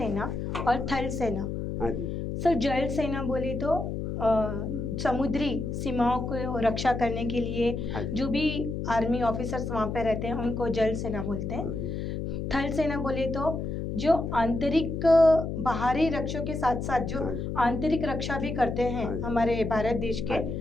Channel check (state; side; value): noise; left; hum, 3 dB below the sound